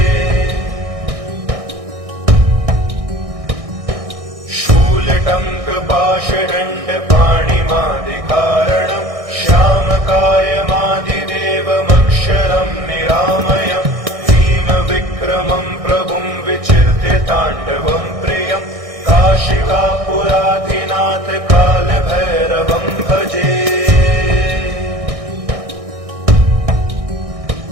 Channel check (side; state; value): left; late; 1.6 ms